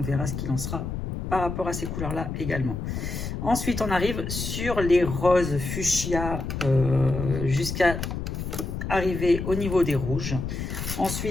verra ce qu'il en sera par rapport à ces couleurs là également. Ensuite on arrive sur les roses fuchsia jusqu'à arriver au niveau des rouges.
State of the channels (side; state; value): left; noise; rumble, 4 dB below the sound